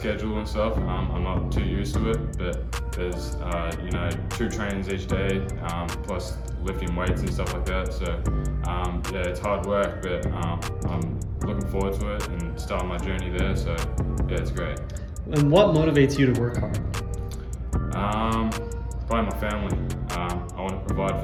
and stuff. I'm not too used to it, but there's, 2 trainings each day, plus lifting weights and stuff like that. So, yeah, it's hard work, but I'm looking forward to it and starting my journey there. So, yeah, it's great. And what motivates you to work hard? Probably my family. I want to provide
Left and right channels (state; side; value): identical; both; correlation 1.00